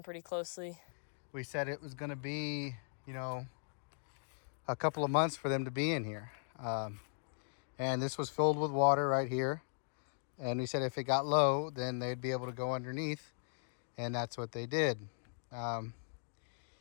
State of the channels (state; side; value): silent; right; digital silence